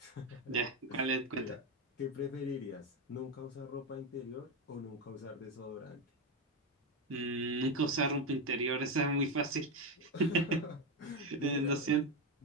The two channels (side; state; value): both; normal; correlation 0.09